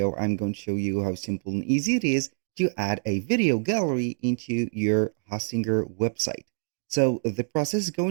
I'm going to show you how simple and easy it is to add a video gallery into your Hostinger website. So the process is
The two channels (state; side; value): silent; left; digital silence